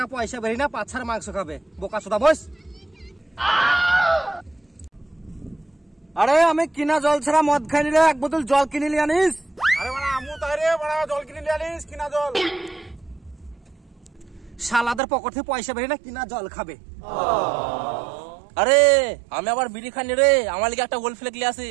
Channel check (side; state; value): left; drops out; at 15.0 s